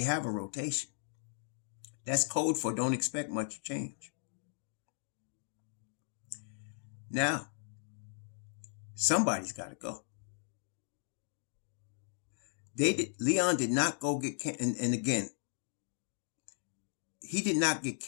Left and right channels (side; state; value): right; silent; digital silence